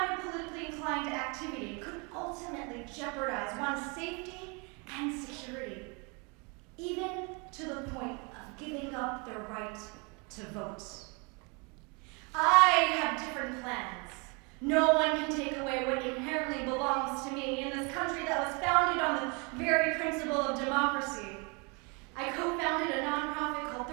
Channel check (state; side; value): quieter; left; 31.7 dB